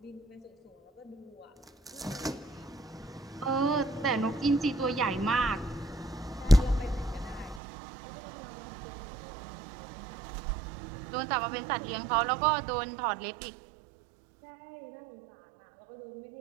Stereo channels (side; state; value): left; drops out; at 7.6 s